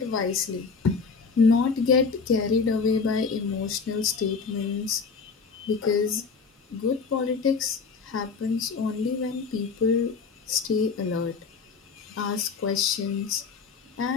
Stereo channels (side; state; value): right; quieter; 5.1 dB